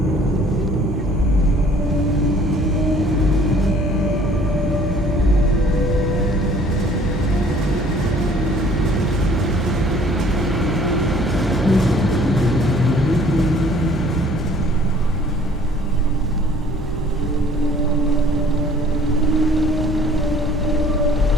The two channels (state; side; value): normal; both; correlation 0.55